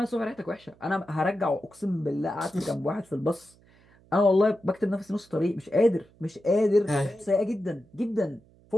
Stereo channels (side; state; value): right; noise; hum, 29 dB below the sound